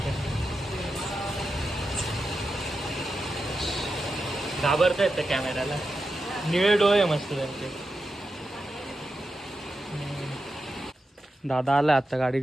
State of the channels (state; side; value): normal; both; correlation 0.89